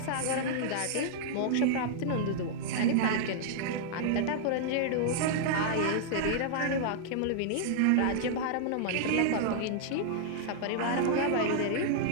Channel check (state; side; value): different; both; correlation -0.01